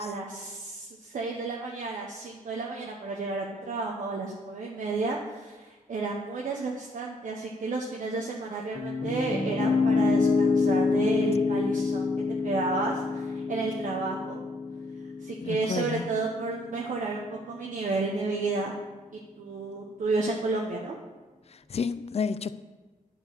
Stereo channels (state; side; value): normal; both; correlation 0.66